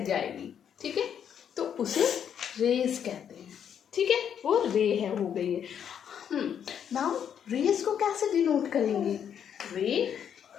जाएगी। ठीक है, तो उसे रेज कहते हैं। ठीक है, वो रे है, हो गई है। नाउ रेज को कैसे डिनोट करेंगे? रे,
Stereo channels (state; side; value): quieter; right; 8.5 dB